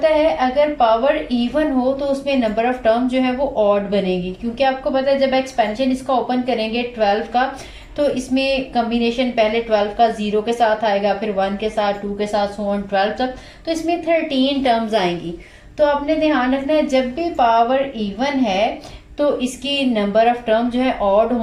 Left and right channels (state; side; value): identical; both; correlation 1.00